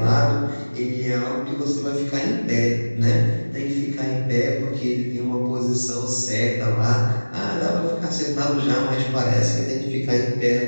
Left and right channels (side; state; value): both; inverted; correlation -1.00